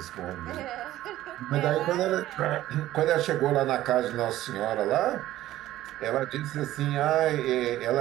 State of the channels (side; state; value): left; quieter; 14.6 dB